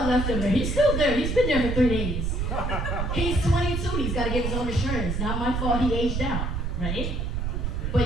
left him there. He's still there. He's been there for 3 days. He's 22. He's got to get his own insurance. Not my fault he aged out, right?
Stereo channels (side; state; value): right; noise; rumble, 1 dB below the sound